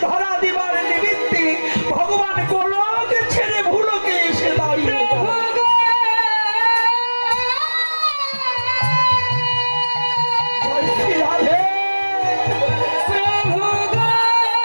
ধরা দিবার নিমিত্তে ভগবান গোলক ছেড়ে ভুলোকে এসে দাঁড়িয়ে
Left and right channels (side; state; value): both; inverted; correlation -1.00